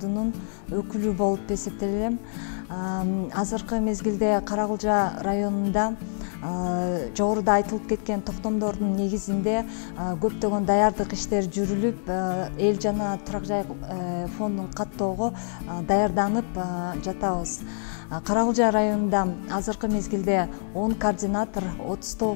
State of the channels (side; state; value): right; silent; digital silence